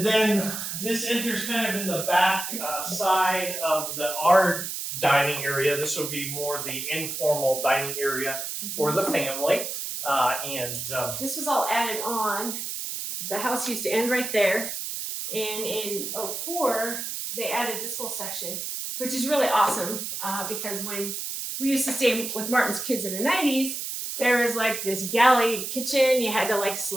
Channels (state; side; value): noise; right; hiss, 5 dB below the sound